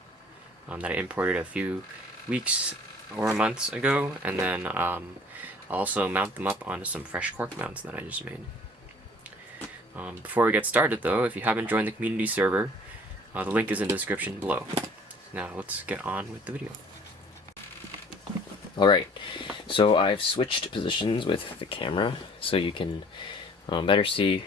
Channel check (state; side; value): normal; both; correlation 0.52